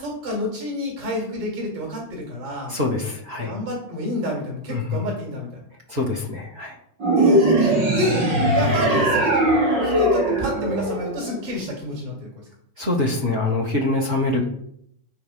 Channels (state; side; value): late; left; 5.5 ms